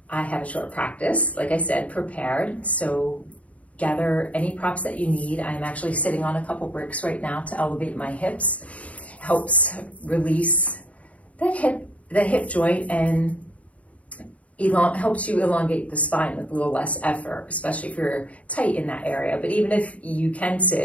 I have a short practice, like I said, prepared. So gather any props that you need. I'm actually sitting on a couple bricks right now to elevate my hips. Helps release the hip joint and helps you elongate the spine with a little less effort, especially if you're tight in that area. But even if you can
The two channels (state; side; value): late; right; 0.067 ms